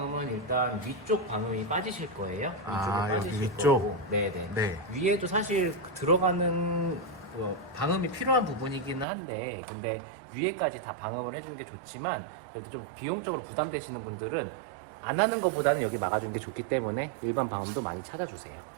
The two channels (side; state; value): left; drops out; at 9.1 s